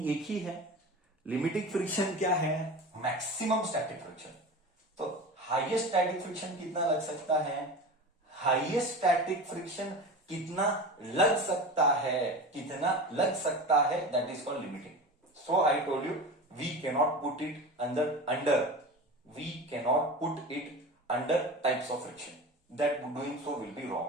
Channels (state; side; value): normal; both; correlation 0.31